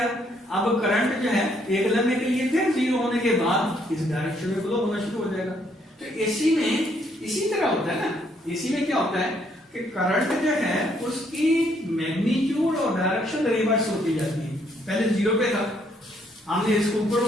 अब करंट जो है एक लम्हे के लिए फिर 0 होने के बाद इस डायरेक्शन में फ्लो होना शुरू हो जाएगा। तो एसी में इसी तरह होता है ना, एसी में क्या होता है कि करंट जो है उसकी मैग्नीट्यूड और डायरेक्शन रिवर्स होती जाती है। पहले 0 पे था, हमने इसको ऊपर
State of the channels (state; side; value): normal; both; correlation 0.70